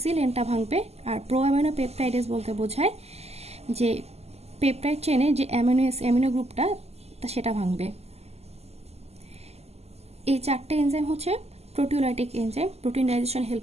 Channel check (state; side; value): late; left; 0.30 ms